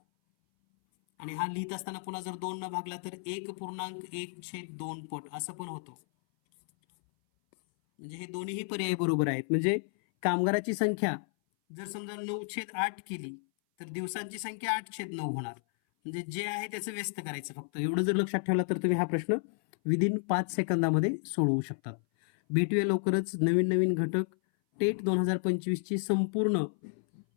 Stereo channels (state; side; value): silent; right; 57 dB below the other